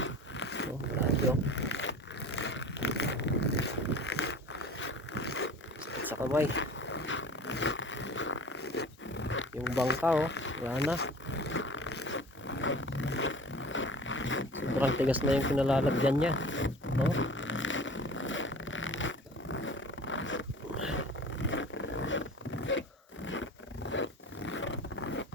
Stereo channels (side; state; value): both; normal; correlation 0.40